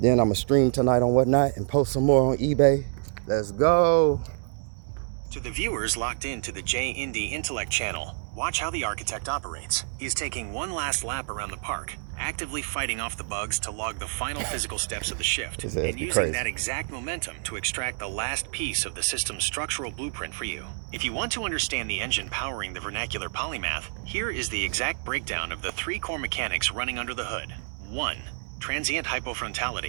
I'm gonna stream tonight on Whatnot and post some more on eBay. Let's go. To the viewers locked into the J-Indy Intellect channel, watch how the architect operates. He's taking one last lap around the park, actively fighting off the bugs to log the final physical steps of the shift, and using that exact momentum to extract the last piece of the system's structural blueprint for you. If you want to understand the engine powering the vernacular polymath, here is the exact breakdown of the 3 core mechanics running under the hood. 1. Transient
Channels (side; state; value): left; silent; 60 dB below the other